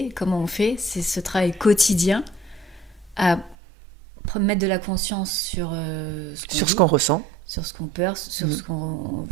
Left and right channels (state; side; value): drops out; left; at 3.6 s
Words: comment on fait, c'est ce travail quotidien à mettre de la conscience sur ce qu'on ressent, sur ce qu'on peur, sur ce qu'on